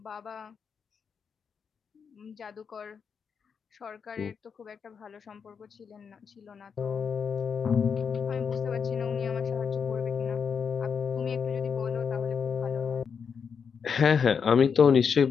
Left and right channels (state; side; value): quieter; right; 6.4 dB